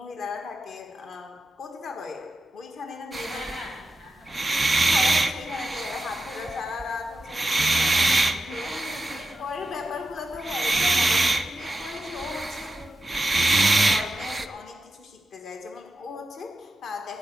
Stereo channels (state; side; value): normal; both; correlation 0.91